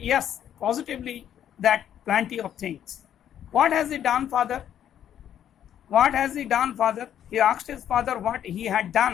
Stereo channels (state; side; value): quieter; right; 10.1 dB